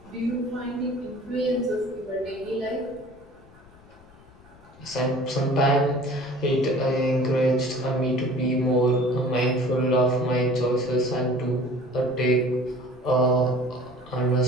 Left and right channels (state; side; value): noise; left; rumble, 25 dB below the sound